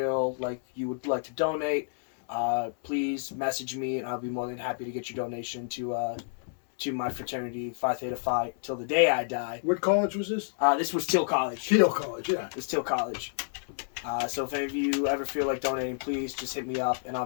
like you would like to donate, please message me, and I'll be more than happy to get your donation to my fraternity, Phi Theta Phi, till the day I die. What college was this? This was Teal College. Teal College, yeah. It was Teal College. So if any of you ever feel like donating, please just hit me up, and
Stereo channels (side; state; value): right; silent; 58 dB below the other